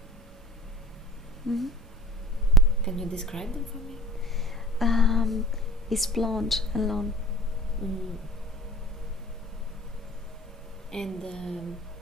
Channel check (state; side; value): normal; both; correlation 0.45